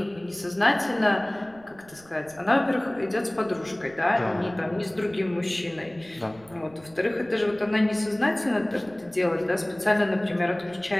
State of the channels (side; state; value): right; noise; rumble, 25 dB below the sound